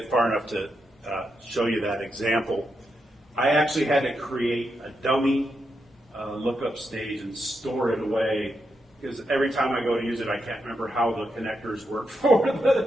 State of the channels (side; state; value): both; normal; correlation 0.84